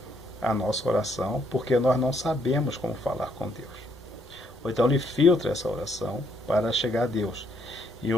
a nossa oração, porque nós não sabemos como falar com Deus. Ou então ele filtra essa oração para chegar a Deus. Em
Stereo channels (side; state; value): both; normal; correlation 0.71